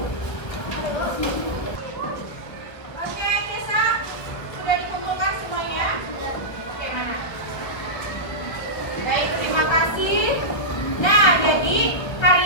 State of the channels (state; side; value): late; right; 1.4 ms